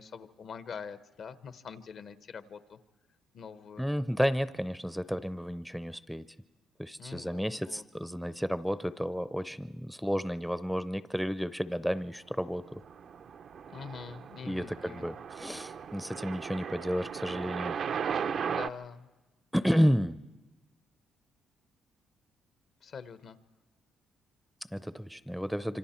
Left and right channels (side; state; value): both; normal; correlation 0.96